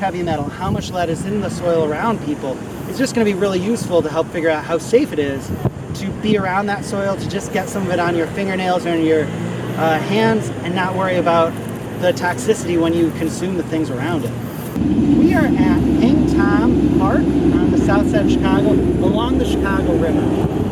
metal, how much lead is in the soil around people is just going to be really useful to help figure out how safe it is to be around that soil, to just get some of it on your fingernails or on your hands and not worry about the toxicity when you consume the things around it. We are at Hang Tom Park on the south side of Chicago, along the Chicago River.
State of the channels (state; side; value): identical; both; correlation 1.00